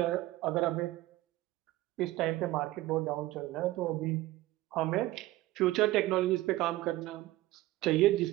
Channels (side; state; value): left; quieter; 17.2 dB